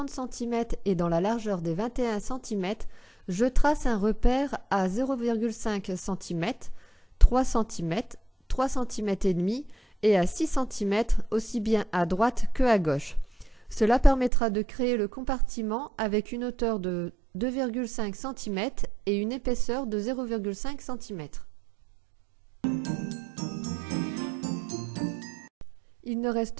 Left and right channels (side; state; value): left; drops out; at 14.3 s